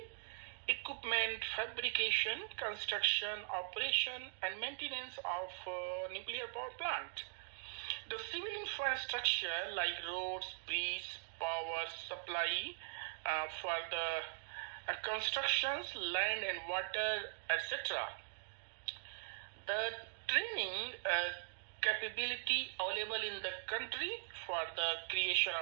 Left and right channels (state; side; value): silent; left; digital silence